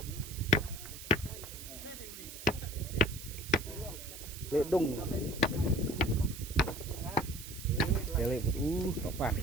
Ledung. Balik. Kapan?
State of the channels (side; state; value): right; noise; hiss, 12 dB below the sound